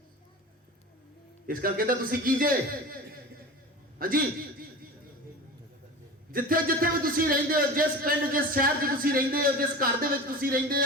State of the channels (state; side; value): normal; both; correlation 0.33